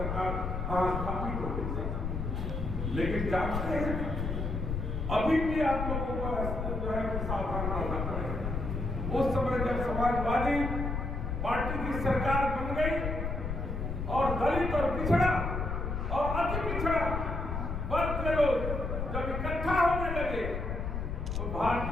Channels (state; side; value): noise; left; rumble, 3 dB below the sound